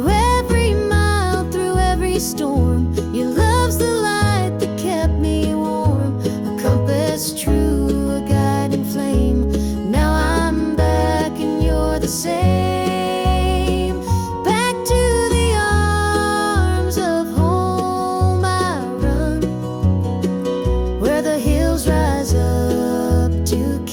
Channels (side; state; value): both; identical; correlation 1.00